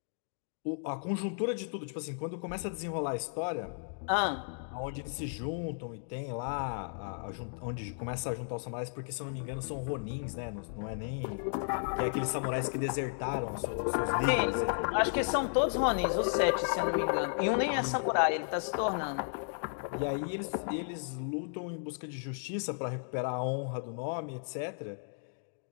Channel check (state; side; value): silent; right; digital silence